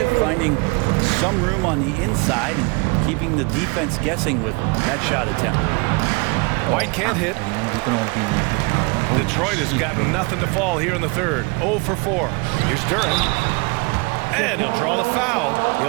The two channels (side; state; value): left; quieter; 28.8 dB